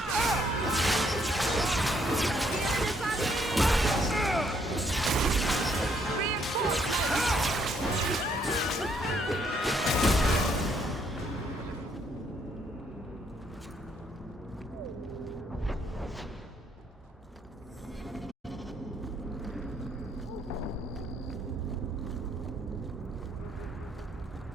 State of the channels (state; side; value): normal; both; correlation 0.70